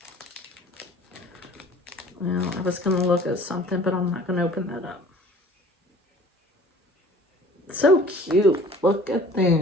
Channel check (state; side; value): normal; both; correlation 0.49